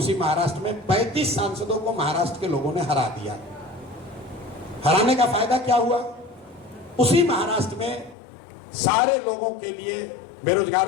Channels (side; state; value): right; drops out; at 8.2 s